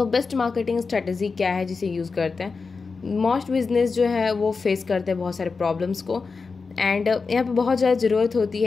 बेस्ट मार्केटिंग स्ट्रेटजी क्या है जिसे यूज़ करते हैं? मोस्ट बिजनेस जो है वो फेस करते हैं बहुत सारे प्रॉब्लम्स को, एंड यहाँ पे बहुत ज़्यादा ज़रूरत होती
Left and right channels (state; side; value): quieter; right; 4.6 dB